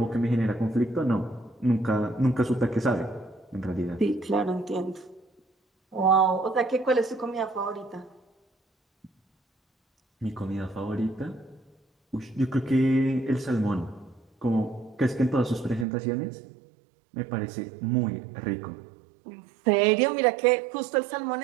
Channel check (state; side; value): drops out; left; at 15.9 s